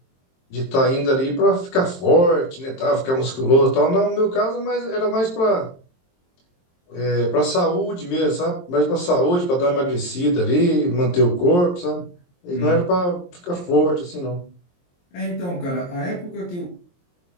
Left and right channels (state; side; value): late; right; 23 ms